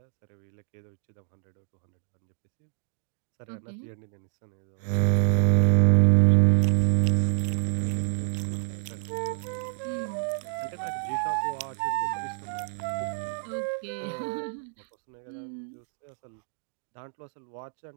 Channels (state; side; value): silent; left; 59 dB below the other